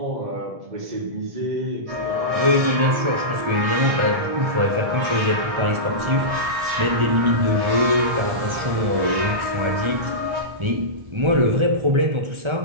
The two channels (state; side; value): late; left; 1.4 ms